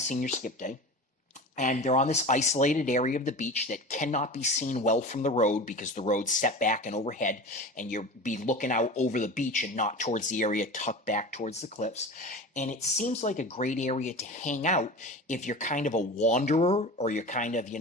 senior skip day. And they're on this isolated area of the beach that cannot be seen well from the road because the road's set back and overhead, and you'll be looking out over the beach and not towards the area tucked back towards the cliffs. And it seems like a great area to hang out if you're kind of a wanderer, or you're kind of,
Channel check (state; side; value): normal; both; correlation 0.32